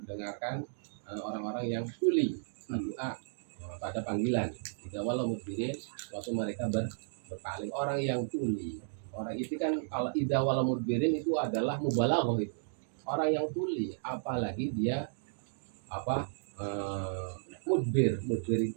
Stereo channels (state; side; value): silent; left; digital silence